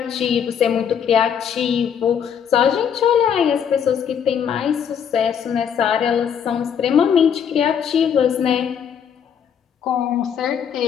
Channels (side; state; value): right; quieter; 7.9 dB